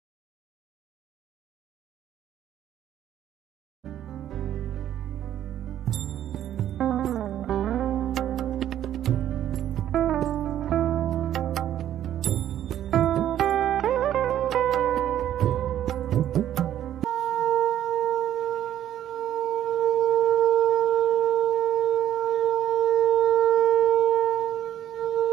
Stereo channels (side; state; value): left; quieter; 11.3 dB